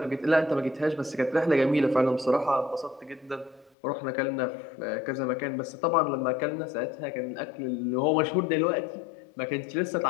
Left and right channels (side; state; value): right; drops out; at 3.7 s